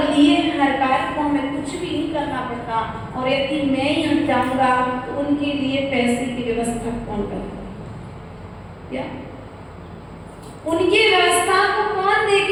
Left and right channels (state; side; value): identical; both; correlation 1.00